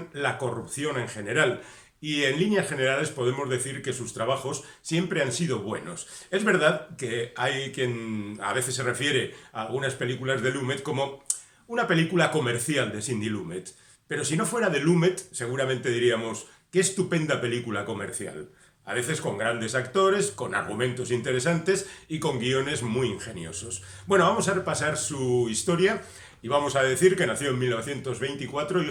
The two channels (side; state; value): both; identical; correlation 1.00